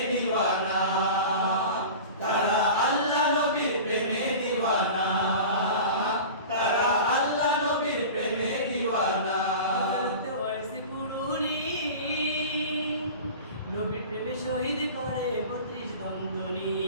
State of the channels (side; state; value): both; inverted; correlation -0.35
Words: দিওয়ানা, তারা আল্লাহ নবীর প্রেমে দিওয়ানা, তারা আল্লাহ নবীর প্রেমে দিওয়ানা। হযরত ওয়াইস কুরুনি নবীর প্রেমে শহীদ করে 32 দন্তনি,